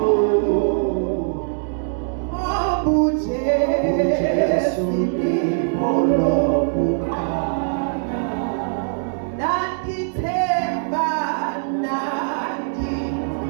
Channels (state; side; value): silent; left; 64 dB below the other